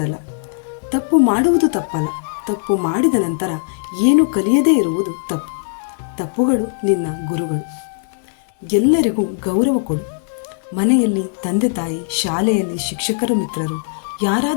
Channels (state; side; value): silent; right; digital silence